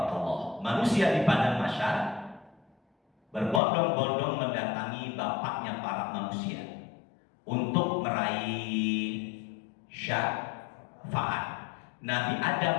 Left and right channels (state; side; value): drops out; right; at 3.6 s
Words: Manusia di padang mahsyar berbondong-bondong mendatangi bapaknya para manusia untuk meraih syafaat. Nabi